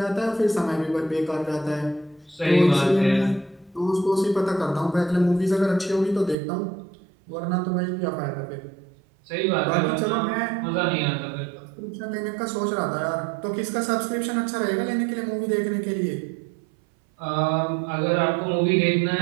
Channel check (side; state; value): left; drops out; at 6.4 s